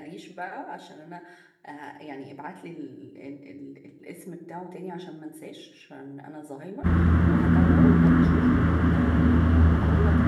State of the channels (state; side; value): identical; both; correlation 1.00